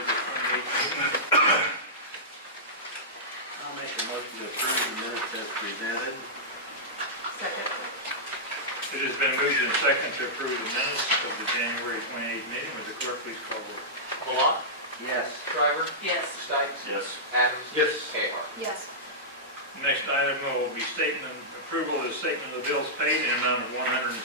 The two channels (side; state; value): both; normal; correlation -0.13